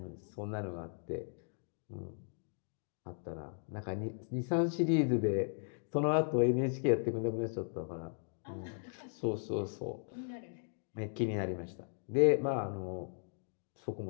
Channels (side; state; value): right; silent; digital silence